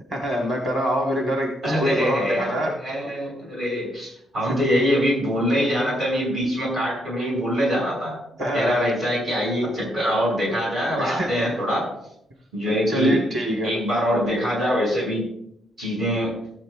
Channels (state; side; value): normal; both; correlation 0.73